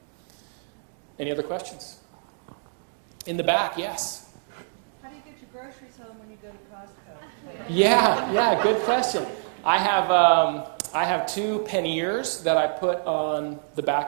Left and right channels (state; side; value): silent; left; digital silence